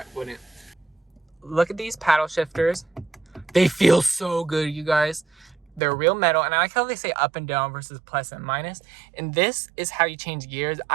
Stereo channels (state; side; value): drops out; left; at 5.8 s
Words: it wouldn't. Look at these paddle shifters. They feel so good, you guys. They're real metal, and I like how they say up and down versus plus and minus. And this is how you change gears.